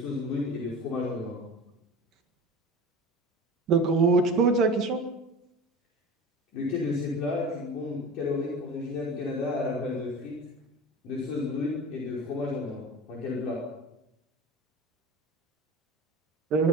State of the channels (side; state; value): both; normal; correlation 0.35